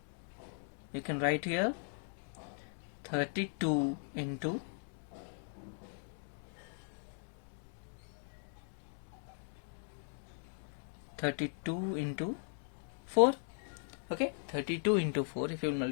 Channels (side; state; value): right; silent; 52 dB below the other